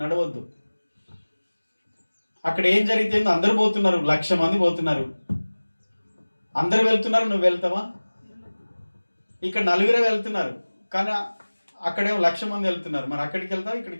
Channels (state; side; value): inverted; both; correlation -1.00